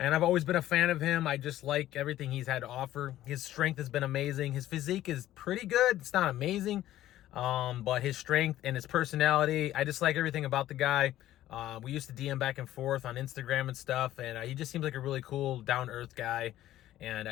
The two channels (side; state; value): right; quieter; 13.7 dB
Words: I've always been a fan of him. I just like everything he's had to offer. His strength has been amazing. His physique is pretty good. It's not amazing, but his strength and his personality, I just like everything about the guy. We used to DM back and forth on Instagram and stuff, and he just seems like a really cool, down-to-earth guy. And